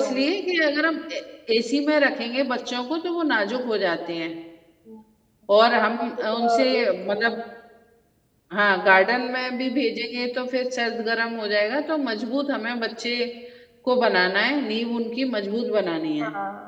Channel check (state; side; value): identical; both; correlation 1.00